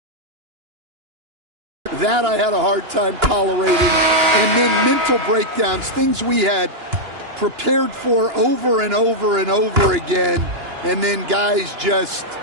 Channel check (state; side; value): late; left; 2.9 ms